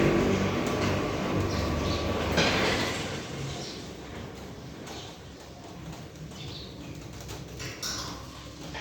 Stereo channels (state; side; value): identical; both; correlation 1.00